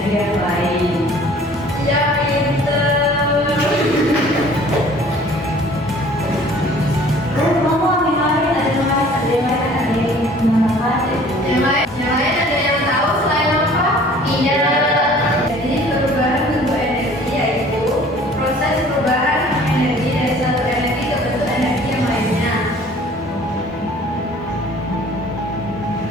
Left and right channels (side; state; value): both; normal; correlation 0.51